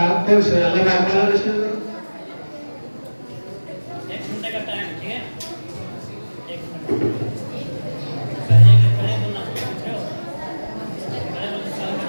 کو اللہ کا اکبر رشن کرو۔ ایک گھنٹے کا ٹائم، ٹھیک ہے؟ ایک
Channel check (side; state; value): both; inverted; correlation -1.00